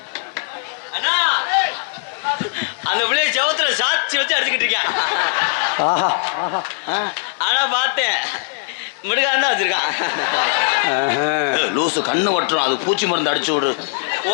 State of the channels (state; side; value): silent; right; digital silence